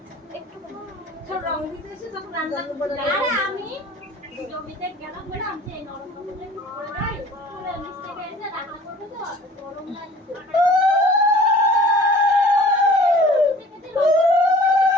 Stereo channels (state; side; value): normal; both; correlation 0.48